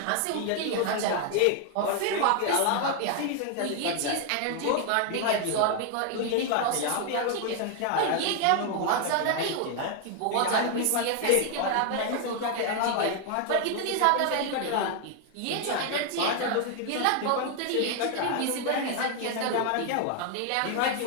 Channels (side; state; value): both; different; correlation 0.00